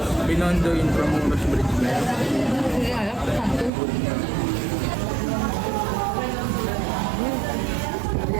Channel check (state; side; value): drops out; left; at 3.7 s